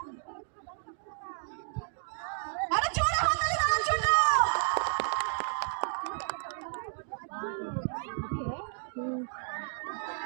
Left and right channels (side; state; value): left; silent; digital silence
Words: আরে জোরে হাততালি দেওয়ার জন্য।